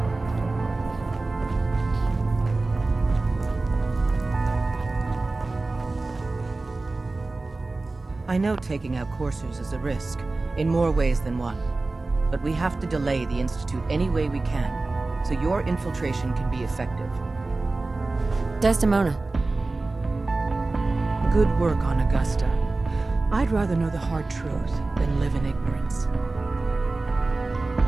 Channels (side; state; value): left; quieter; 3.3 dB